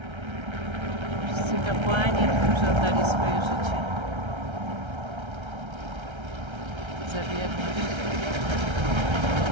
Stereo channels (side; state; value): left; late; 1.3 ms